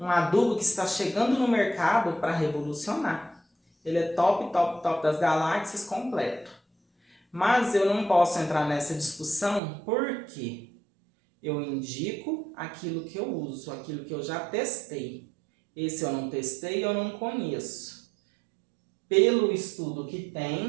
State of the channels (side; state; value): left; drops out; at 9.6 s